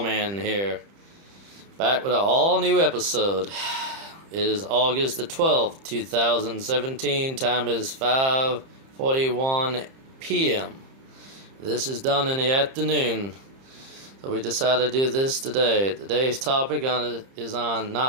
here, back with an all-new episode. It is August the 12th, 2017, time is 5:41 p.m. This is done in the afternoon, so we decided to do this today. Today's topic is on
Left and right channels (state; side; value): late; left; 30 ms